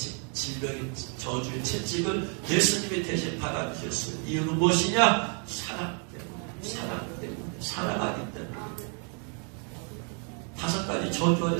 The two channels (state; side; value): quieter; left; 39.9 dB